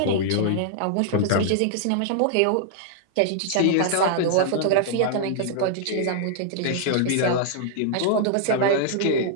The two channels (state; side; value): different; both; correlation -0.01